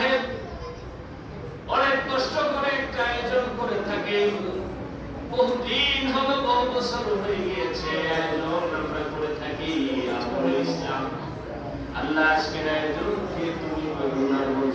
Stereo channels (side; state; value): both; identical; correlation 1.00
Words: অনেক কষ্ট করে একটা আয়োজন করে থাকেন। বহুদিন হলো, বহু বছর হয়ে গিয়েছে আয়োজন আমরা করে থাকি। আমলে ইসলাম আল্লাহ আজকের আয়োজনকে তুমি করুণার